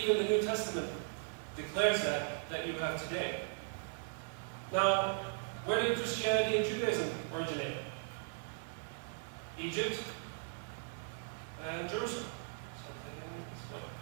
the New Testament declares that you have today. Now, where did Christianity and Judaism originate? Egypt and Jerusalem.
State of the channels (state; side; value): silent; left; 52 dB below the other